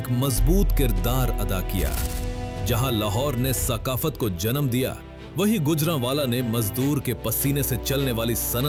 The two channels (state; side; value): identical; both; correlation 1.00